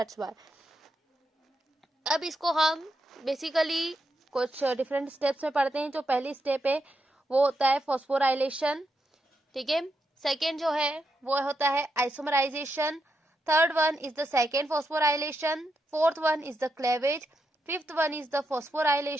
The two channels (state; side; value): normal; both; correlation 0.84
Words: व्हाई। अब इसको हम बेसिकली कुछ डिफरेंट स्टेप्स में पढ़ते हैं। जो पहली स्टेप है वो होता है फॉस्फोराइलेशन, ठीक है। सेकेंड जो है वो होता है isomerisation. Third one is the second phosphorylation. Fourth one is the cleavage. Fifth one is the